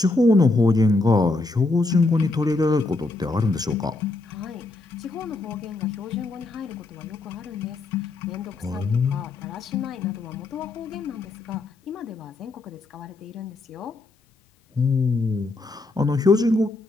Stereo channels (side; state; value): right; quieter; 3.2 dB